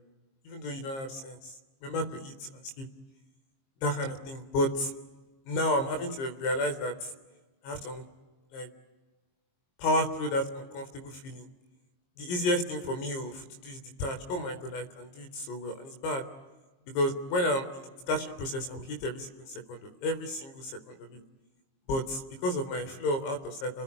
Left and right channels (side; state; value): right; late; 22 ms